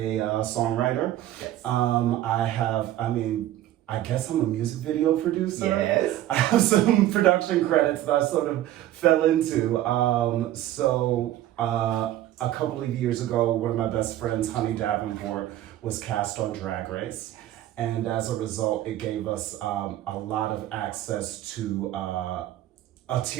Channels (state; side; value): quieter; left; 13.5 dB